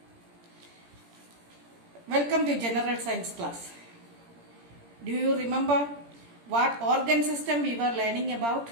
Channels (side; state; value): left; late; 17 ms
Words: Welcome to General Science class. Do you remember what organ system we were learning about?